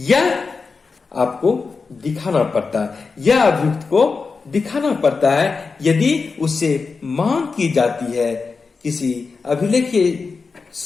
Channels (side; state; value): right; quieter; 4.6 dB